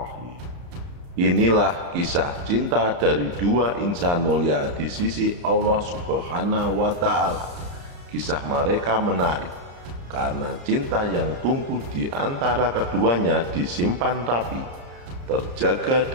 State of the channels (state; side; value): late; left; 34 ms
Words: Inilah kisah cinta dari dua insan mulia di sisi Allah Subhanahu wa Ta'ala. Kisah mereka menarik karena cinta yang tumbuh di antara keduanya disimpan rapi, terjaga